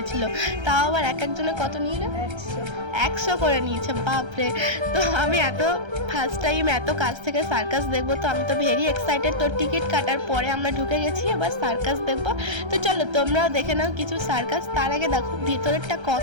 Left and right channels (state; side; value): late; left; 1.3 ms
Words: তাও আবার এক একজনে কত নিল, 100 করে নিয়েছে, বাপরে। তো আমি ফার্স্ট টাইম এত কাছ থেকে সার্কাস দেখবো, তো আমি তো ভেরি এক্সাইটেড। তো টিকিট কাটার পরে আমরা ঢুকে গেছি, এবার সার্কাস দেখবো। তো চলো তোমরাও দেখে নাও কিছু সার্কাস। তার আগে দেখো ভিতরেরটা